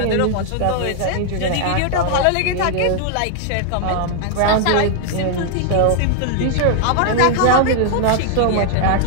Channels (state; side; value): different; both; correlation 0.00